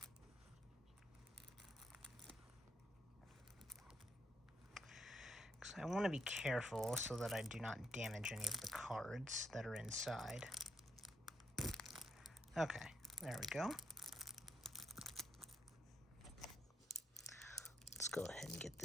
I want to be careful so that I do not damage any of the cards that are inside. Okay, there we go. Let's go ahead and get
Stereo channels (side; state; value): both; normal; correlation 0.76